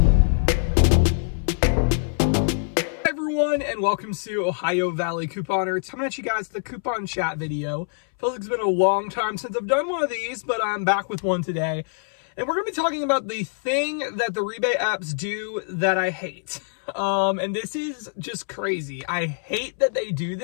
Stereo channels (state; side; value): silent; right; 62 dB below the other